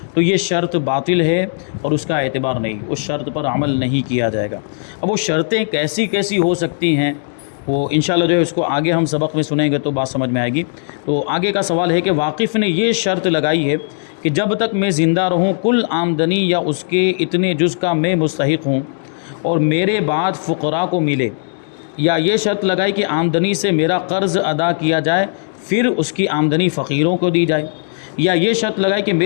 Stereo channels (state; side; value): silent; right; digital silence